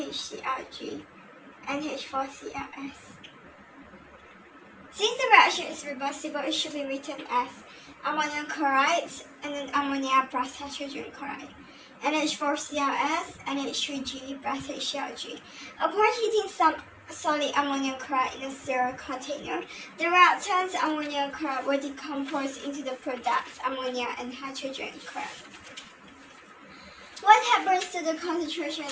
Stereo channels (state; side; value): identical; both; correlation 1.00